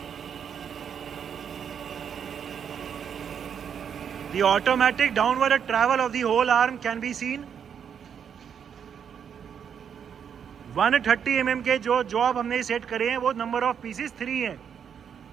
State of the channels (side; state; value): left; quieter; 7.8 dB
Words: The automatic downward travel of the whole arm can be seen. 130 mm के जो जॉब हमने सेट करे हैं वो नंबर ऑफ पीसेस 3 हैं।